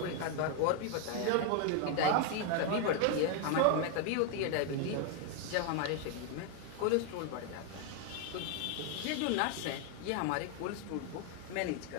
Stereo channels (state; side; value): different; both; correlation 0.00